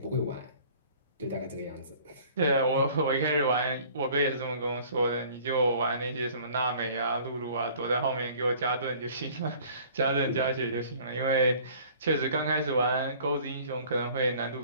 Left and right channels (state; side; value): inverted; both; correlation -0.51